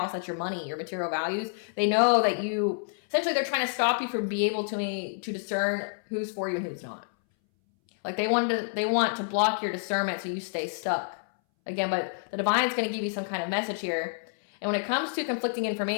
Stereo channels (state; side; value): silent; right; 59 dB below the other